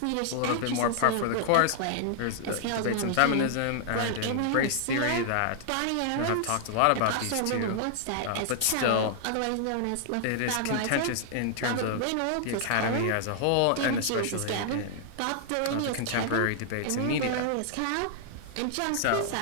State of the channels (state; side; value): different; both; correlation -0.01